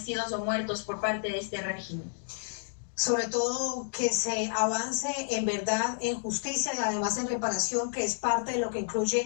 o muertos por parte de este régimen. Sobre todo que se avance en verdad, en justicia y además en reparación, que es parte de lo que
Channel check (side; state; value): right; silent; digital silence